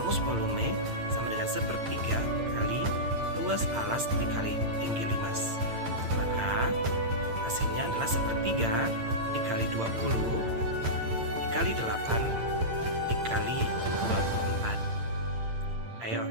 volume sama dengan sepertiga kali luas alas dikali tinggi limas. Maka hasilnya adalah sepertiga dikali 20 dikali 8 dikali 24. Ayo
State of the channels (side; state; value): left; late; 8.8 ms